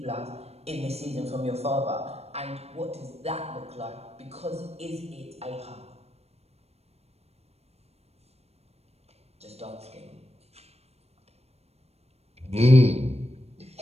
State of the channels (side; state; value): left; late; 0.30 ms